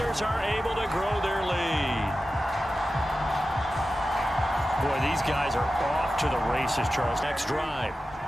are able to grow their lead. Boy, these guys are off to the races, Charles. Next drive.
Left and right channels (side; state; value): both; normal; correlation 0.93